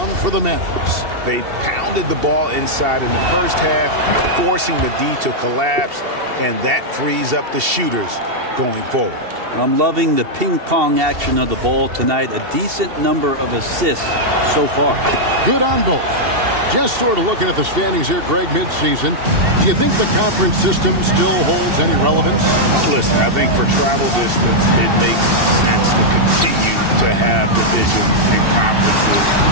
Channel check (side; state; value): left; late; 2.7 ms